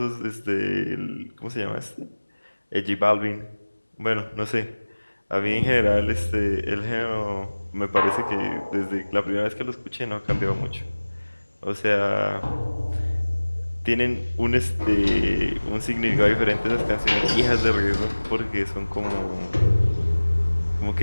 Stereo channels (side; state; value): both; inverted; correlation -1.00